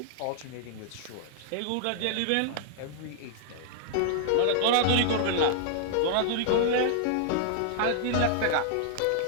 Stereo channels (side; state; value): both; different; correlation -0.01